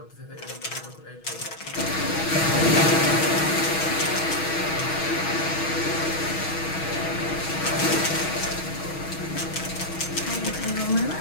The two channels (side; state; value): right; late; 6.2 ms